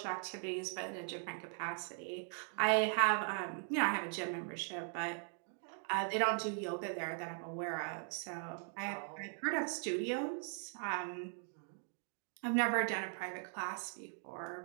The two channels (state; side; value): silent; left; 51 dB below the other